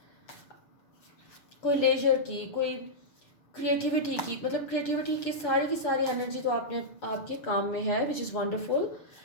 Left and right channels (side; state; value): right; late; 6.9 ms